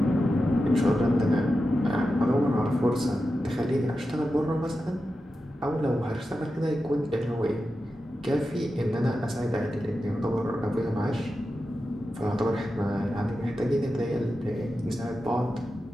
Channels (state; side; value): normal; both; correlation 0.91